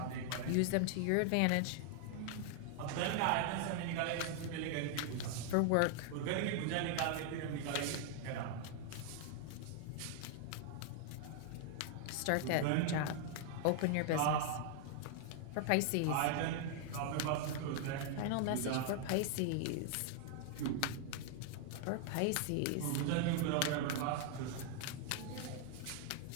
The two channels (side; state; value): both; different; correlation 0.00